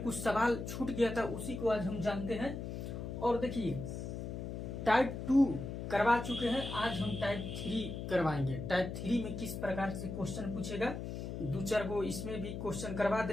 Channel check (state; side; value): noise; left; hum, 6 dB below the sound